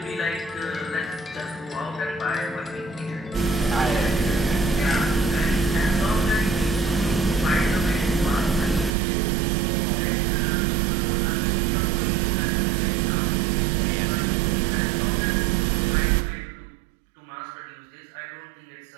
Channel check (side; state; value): left; drops out; at 9.0 s